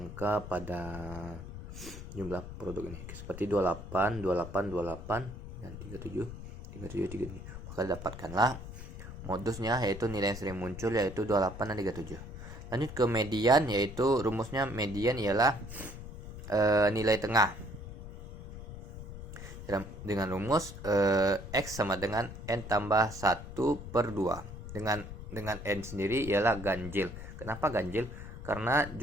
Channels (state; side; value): noise; left; rumble, 11 dB below the sound